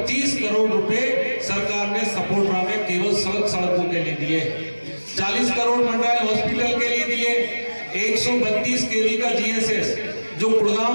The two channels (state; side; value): inverted; both; correlation -1.00